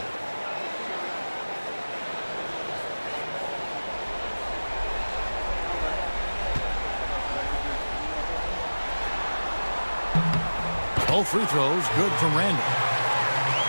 Both free throws good from Randall.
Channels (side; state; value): both; inverted; correlation -1.00